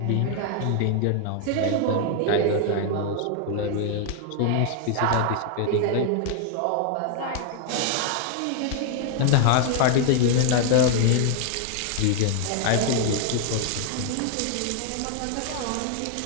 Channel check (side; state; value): both; different; correlation 0.00